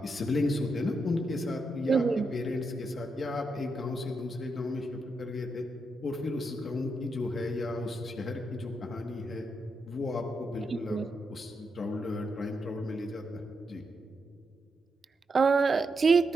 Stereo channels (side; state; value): both; normal; correlation 0.83